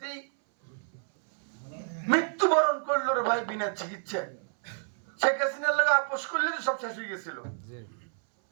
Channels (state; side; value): silent; left; 58 dB below the other